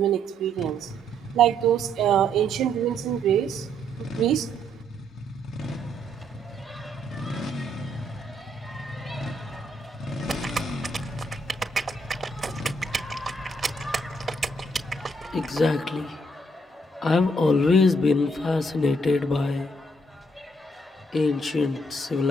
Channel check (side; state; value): both; normal; correlation 0.71